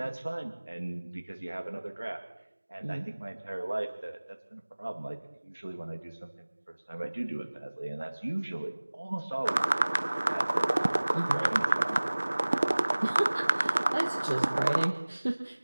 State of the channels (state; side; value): inverted; both; correlation -1.00